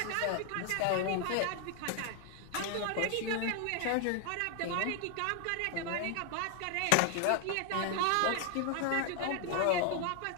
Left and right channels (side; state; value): both; different; correlation 0.00